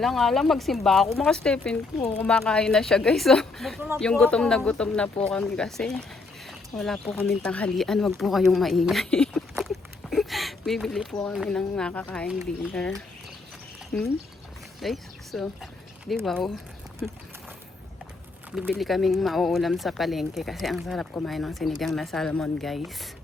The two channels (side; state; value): right; quieter; 3.7 dB